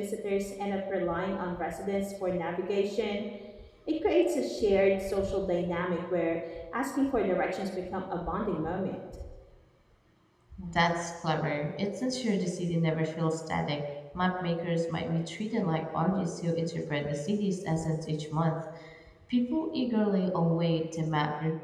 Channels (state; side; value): identical; both; correlation 1.00